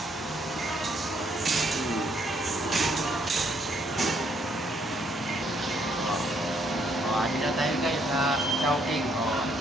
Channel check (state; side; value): normal; both; correlation 0.70